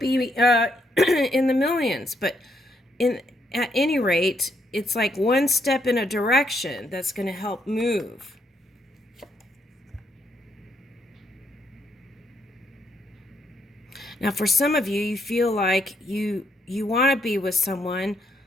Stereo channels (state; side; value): normal; both; correlation 0.74